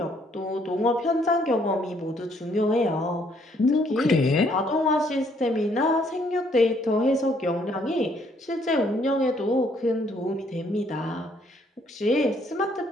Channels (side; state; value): both; normal; correlation 0.67